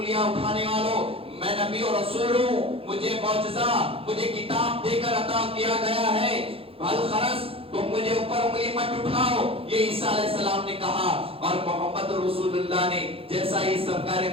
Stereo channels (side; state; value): left; late; 0.27 ms